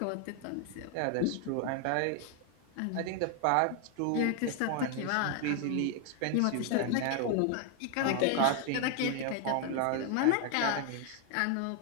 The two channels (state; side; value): different; both; correlation 0.01